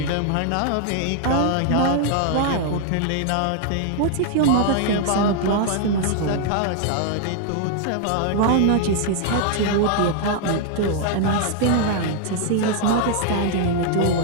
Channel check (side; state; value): both; different; correlation 0.00